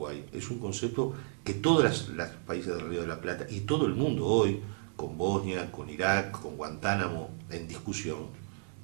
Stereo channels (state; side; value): silent; left; 56 dB below the other